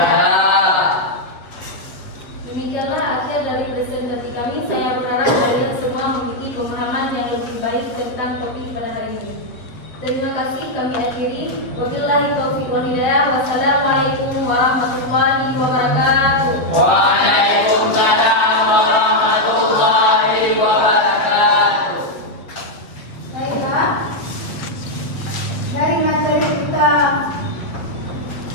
Demikianlah akhir dari presentasi kami. Saya berharap kalian semua memiliki pemahaman yang lebih baik tentang topik pada hari ini. Terima kasih, kami akhiri. Wabillahi taufiq wal hidayah. Wassalamualaikum warahmatullahi wabarakatuh. Waalaikumsalam warahmatullahi wabarakatuh. Baiklah, dari materi kita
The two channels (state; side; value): late; right; 7.7 ms